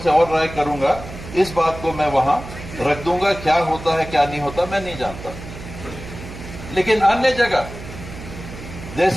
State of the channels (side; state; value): right; noise; hum, 12 dB below the sound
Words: और राय करूंगा। इस बात को मैं वहां रख दूंगा। क्या होता है क्या नहीं होता मैं नहीं जानता। लेकिन अन्य जगह,